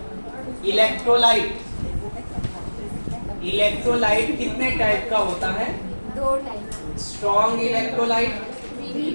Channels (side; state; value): both; inverted; correlation -1.00